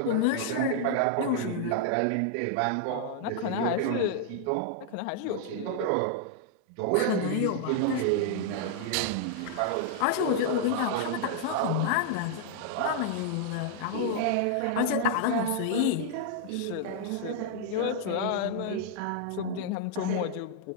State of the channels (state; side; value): different; both; correlation -0.01